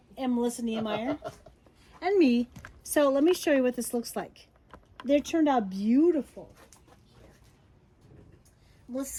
And Melissa Niemeyer. And me. So let me show you what this looks like. They turned out beautiful.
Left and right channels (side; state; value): both; identical; correlation 1.00